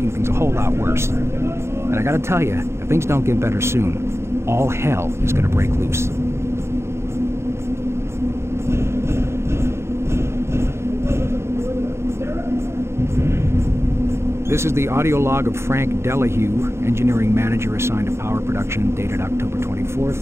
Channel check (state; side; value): late; left; 0.13 ms